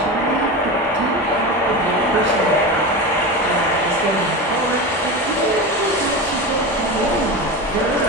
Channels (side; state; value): both; normal; correlation 0.24